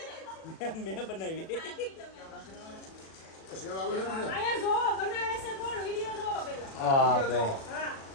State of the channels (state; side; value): late; right; 37 ms